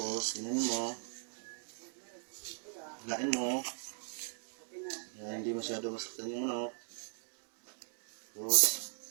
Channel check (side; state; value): left; silent; digital silence